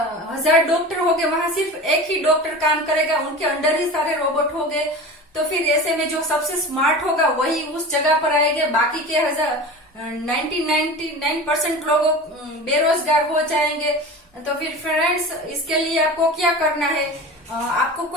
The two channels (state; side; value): normal; both; correlation 0.33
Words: 1000 डॉक्टर हो गए, वहां सिर्फ एक ही डॉक्टर काम करेगा, उनके अंडर ही सारे रोबोट हो गए। तो फिर ऐसे में जो सबसे स्मार्ट होगा वही उस जगह पर आएंगे, बाकी के 99% लोग बेरोजगार हो जाएंगे। तो फिर फ्रेंड्स, इसके लिए आपको क्या करना है, आपको